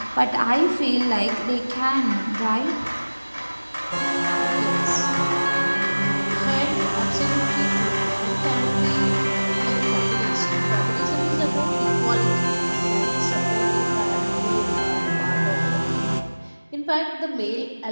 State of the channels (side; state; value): both; inverted; correlation -1.00